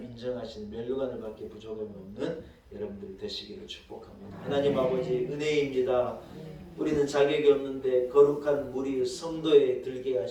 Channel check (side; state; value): both; identical; correlation 1.00